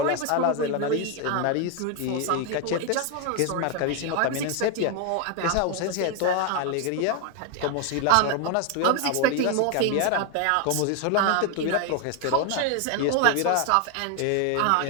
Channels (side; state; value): both; different; correlation 0.01